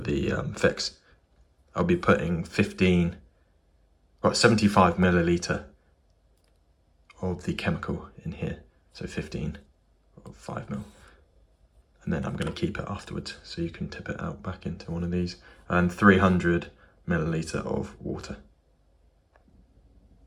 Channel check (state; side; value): identical; both; correlation 1.00